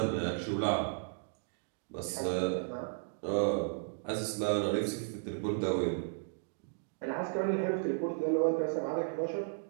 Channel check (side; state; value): left; silent; digital silence